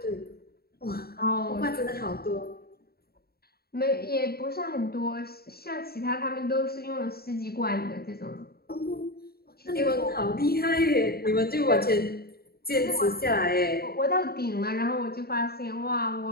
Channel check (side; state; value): right; late; 0.45 ms